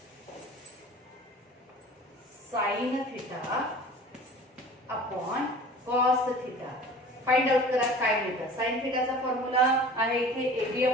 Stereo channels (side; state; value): both; normal; correlation 0.42